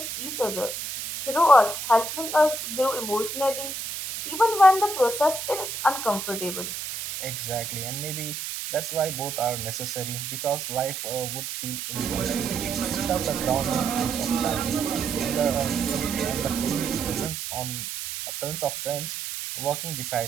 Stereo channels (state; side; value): noise; right; hiss, 6 dB below the sound